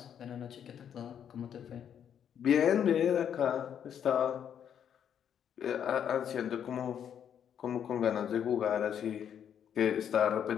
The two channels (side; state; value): right; quieter; 8.8 dB